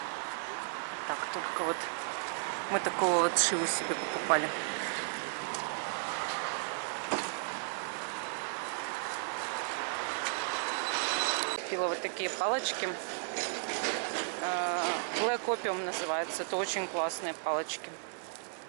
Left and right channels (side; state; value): left; silent; 55 dB below the other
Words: Так, только вот мы такого вот шиву себе покупали. Купила вот такие палочки. Black Opium называется. Это очень классные палочки.